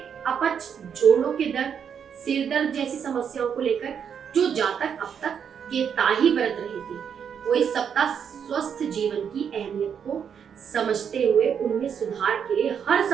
अपच, जोड़ों के दर्द, सिर दर्द जैसी समस्याओं को लेकर जो जातक अब तक केताही बरत रहे थे, वो इस सप्ताह स्वस्थ जीवन की अहमियत को समझते हुए उनमें सुधार के लिए हर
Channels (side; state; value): left; quieter; 7.6 dB